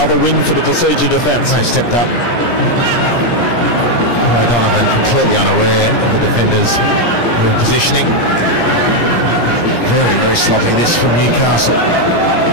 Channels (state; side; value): late; right; 17 ms